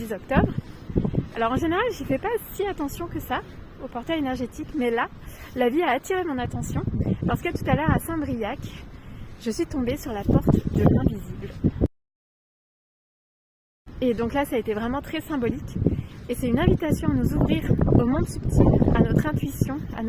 octobre. Alors en général j'y fais pas si attention que ça au portail énergétique, mais là la vie a attiré mon attention parce que tout à l'heure à Saint-Briac je suis tombée sur la porte de l'invisible. Et donc là ça a été vraiment très symbolique et c'est une invitation à nous ouvrir au monde subtil, à notre intuition, à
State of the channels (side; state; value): both; identical; correlation 1.00